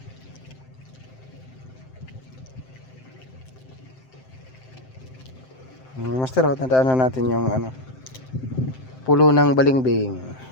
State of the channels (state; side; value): late; right; 7.7 ms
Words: Master, tandaan na natin yung pulo ng balingbing.